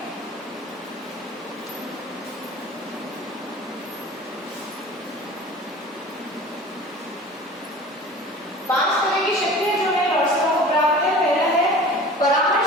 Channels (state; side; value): normal; both; correlation 0.40